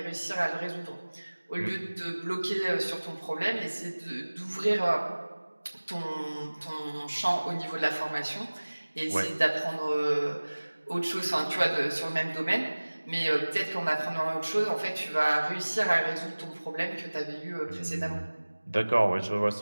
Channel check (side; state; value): both; inverted; correlation -1.00